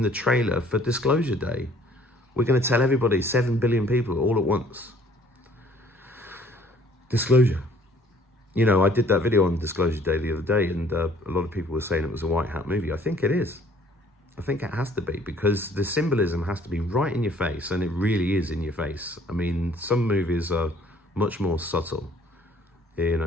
the trailer for Disclosure Day. We're going to tell everybody 7 billion people all at once. Disclosure. You know, I did that video on Disclosure Day the other day, and a lot of people were saying it was a white hat movie. I think it is. I think it has to be, because the symbolism has to be right in your face, and it really is in your face. I mean, some movies are much more subtle, you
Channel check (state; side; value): normal; both; correlation 0.57